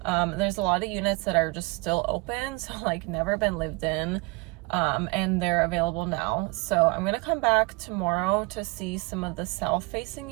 there's a lot of units that are just still open, so like never been lived in. and they're available now. So I'm gonna come back tomorrow to see some of the south facing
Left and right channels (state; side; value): quieter; left; 24.9 dB